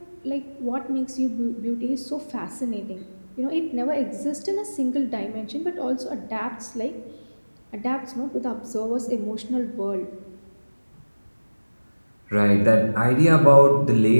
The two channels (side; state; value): both; inverted; correlation -1.00